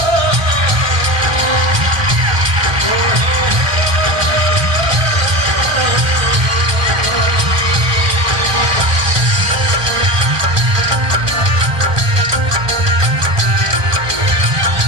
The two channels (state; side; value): late; left; 1.2 ms